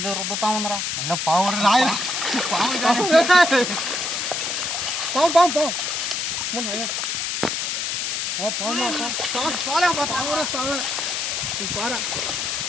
రుద్దుతా ఉందరా. అయినా పాము రాయన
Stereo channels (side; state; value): left; noise; hiss, 1 dB below the sound